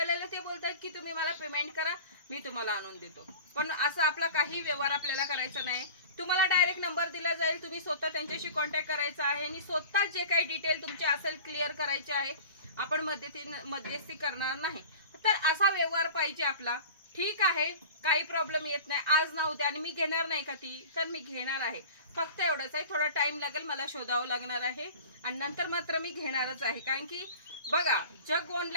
ते बोलतात की तुम्ही मला पेमेंट करा, मी तुम्हाला आणून देतो. पण असं आपला काही व्यवहार आपल्याला करायचा नाही. तुम्हाला डायरेक्ट नंबर दिला जाईल, तुम्ही स्वतः त्यांच्याशी कॉन्टॅक्ट करायचा आहे आणि स्वतः जे काही डिटेल तुमचे असेल क्लिअर करायचे आहे. आपण मध्यस्थी करणार नाही. तर असा व्यवहार पाहिजे आपला. ठीक आहे, काही प्रॉब्लेम येत नाही. आज ना उद्या आणि मी घेणार नाही का ती, तर मी घेणार आहे. फक्त एवढंच आहे, थोडा टाइम लागेल, मला शोधावं लागणार आहे आणि नंतर मात्र मी घेणारच आहे. कारण की बघा जग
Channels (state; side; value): inverted; both; correlation -0.39